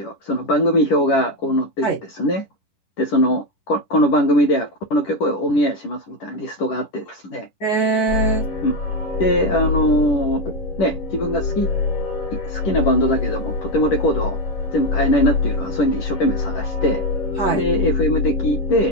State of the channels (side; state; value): right; late; 10 ms